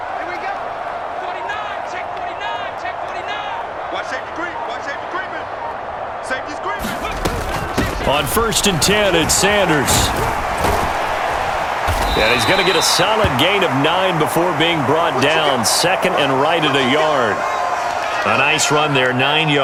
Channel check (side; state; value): both; identical; correlation 1.00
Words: On 1st and 10, it's Sanders. And he's going to get a solid gain of 9 before being brought down. 2nd and right at a yard. A nice run there, 9